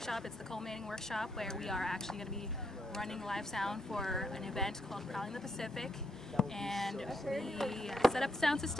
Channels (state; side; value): normal; both; correlation 0.77